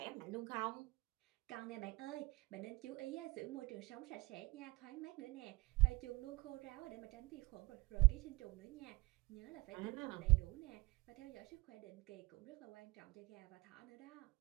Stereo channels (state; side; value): quieter; left; 22.8 dB